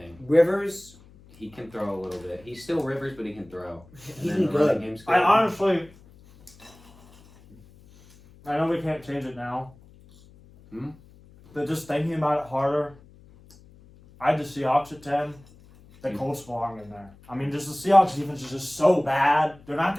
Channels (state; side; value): noise; left; hum, 25 dB below the sound